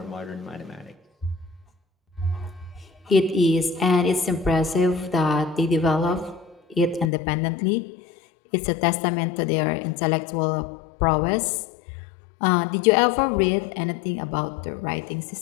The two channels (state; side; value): drops out; right; at 7.1 s